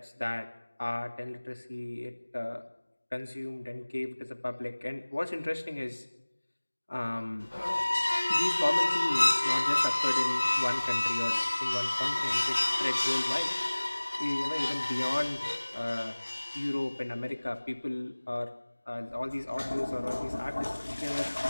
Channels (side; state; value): both; inverted; correlation -1.00